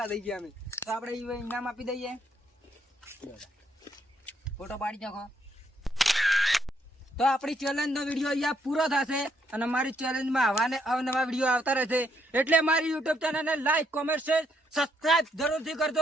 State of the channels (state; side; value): normal; both; correlation 0.73